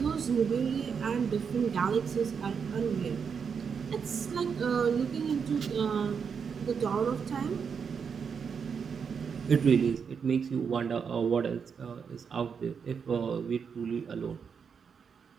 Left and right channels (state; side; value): quieter; left; 6.4 dB